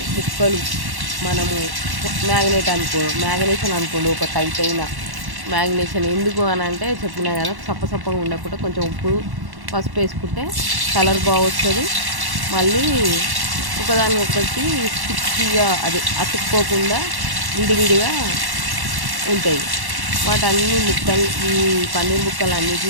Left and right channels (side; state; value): left; late; 1.1 ms